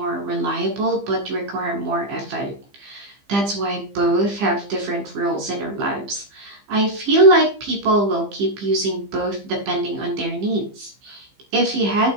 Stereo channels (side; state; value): left; late; 15 ms